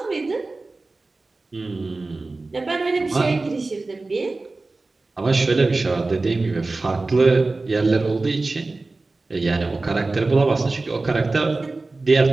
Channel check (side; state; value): left; quieter; 3.4 dB